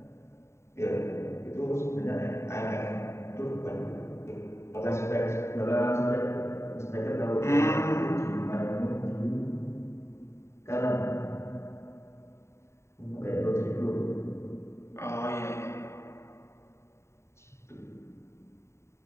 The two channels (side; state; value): right; late; 0.13 ms